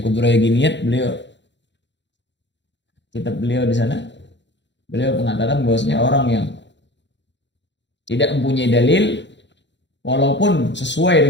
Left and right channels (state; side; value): late; right; 0.52 ms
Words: Kubra Yaginiyat, beliau kitab beliau di sana. Beliau mengatakan bahwasanya orang yang tidak mempunyai dalil walaupun sesuai